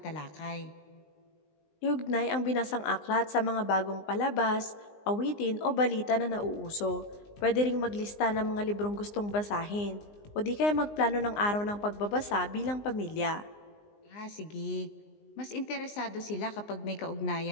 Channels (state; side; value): late; right; 19 ms